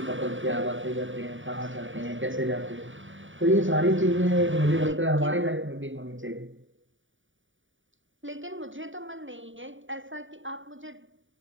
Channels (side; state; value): left; late; 0.56 ms